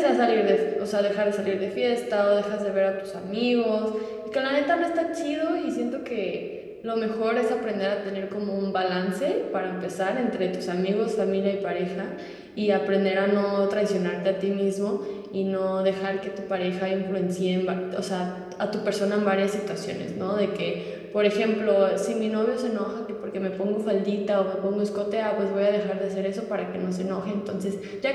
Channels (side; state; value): both; identical; correlation 1.00